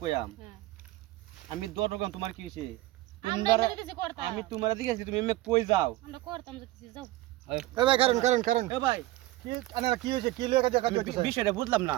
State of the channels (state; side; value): quieter; left; 17.0 dB